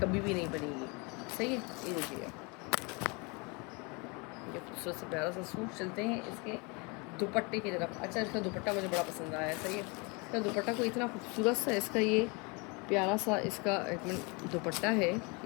भी नहीं बनेगी। सही है। ये देखिएगा ये खूबसूरत से प्यारा सा सूट। चलते हैं इसके दुपट्टे की तरफ। अच्छा, इसका दुपट्टा मुझे बड़ा पसंद आया है। सही है। इसका दुपट्टा को इतना खूबसूरत सा इसका ये प्यारा सा इसका एक मिनट दुपट्टा है,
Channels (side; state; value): right; quieter; 29.8 dB